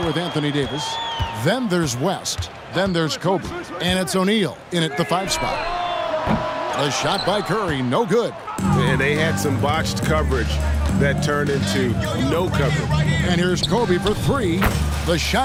with Anthony Davis. Then there's West. Then there's Kobe. And it's O'Neal in at the 5 spot. A shot by Curry, no good. And they had some botched coverage that turned into no coverage. And here's Kobe for 3. The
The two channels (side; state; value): both; identical; correlation 1.00